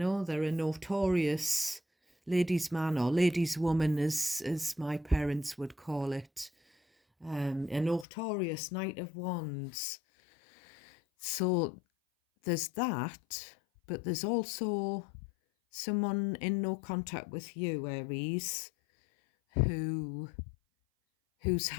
a notorious ladies' man or ladies' woman, as my parents would call it. A notorious Knight of Wands. So there's that, but there's also someone in no contact with you, Aries, who's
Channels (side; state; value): right; drops out; at 8.1 s